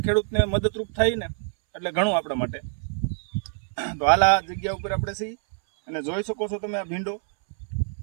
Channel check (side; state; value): left; silent; 61 dB below the other